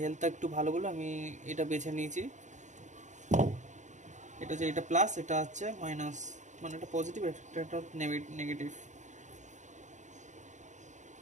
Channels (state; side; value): late; left; 0.35 ms